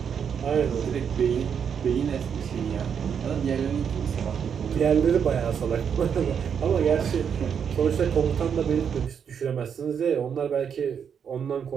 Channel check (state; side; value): quieter; left; 7.4 dB